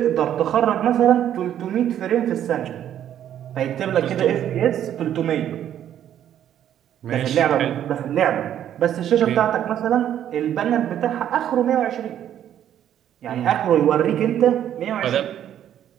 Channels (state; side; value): quieter; left; 10.6 dB